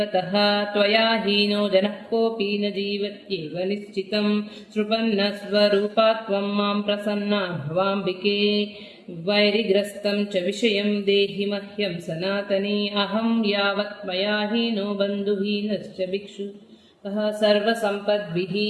త్వయా హీనో జనః కోపి న జీవత్యేవ నిశ్చితం సృపన్నస్వరూపా త్వం మాం ప్రసన్నా భవాంబికే వైరిగ్రస్తం చ విషయం దేహి మహ్యం సనాతనీ అహం యావత్ మయా హీనో బంధుహీనశ్చ భిక్షు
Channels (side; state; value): both; identical; correlation 1.00